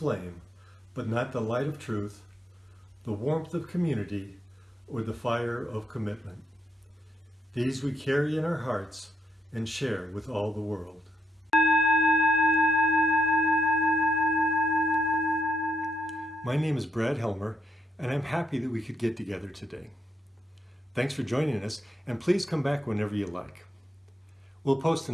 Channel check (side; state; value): both; normal; correlation 0.81